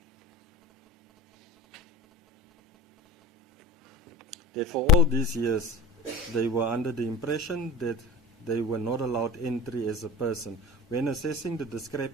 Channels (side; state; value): both; normal; correlation 0.35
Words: That for all these years, they were under the impression that they were not allowed entry as a person. When assessing the